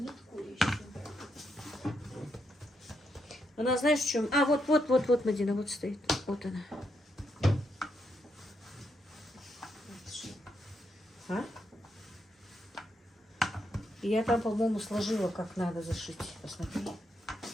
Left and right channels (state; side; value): normal; both; correlation 0.80